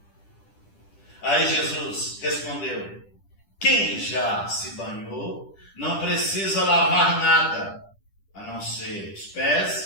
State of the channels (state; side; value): late; right; 10 ms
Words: Aí Jesus respondeu: quem já se banhou não precisa lavar nada, a não ser os